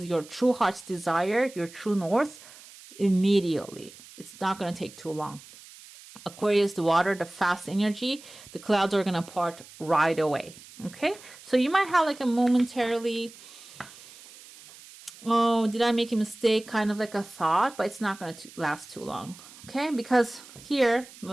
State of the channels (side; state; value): right; noise; hiss, 20 dB below the sound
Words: your true heart's desire, your true north, immediately. It's not going to take too long. Aquarius, the water, the fast energy, the clouds are going to part right away. Okay, so you might have like a momentarily, oh, did I make a mistake? Kind of like a thought, but it's not going to last too long. Okay, because here